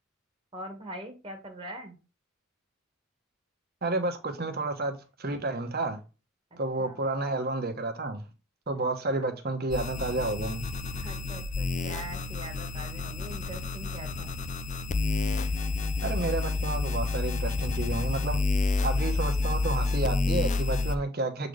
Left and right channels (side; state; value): both; normal; correlation 0.50